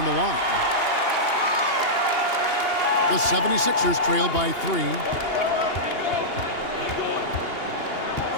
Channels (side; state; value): right; late; 2.8 ms